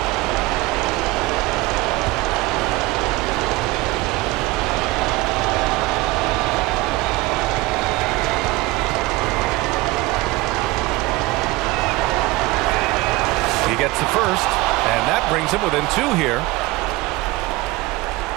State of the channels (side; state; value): left; quieter; 20.5 dB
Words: Gets the first, and that brings him within 2 here.